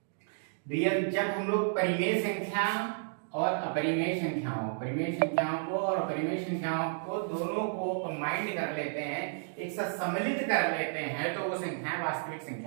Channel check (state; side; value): silent; left; digital silence